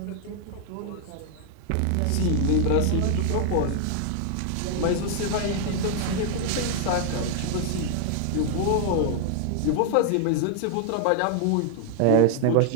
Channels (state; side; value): different; both; correlation 0.00